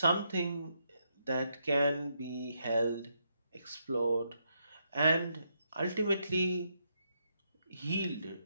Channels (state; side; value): inverted; both; correlation -0.79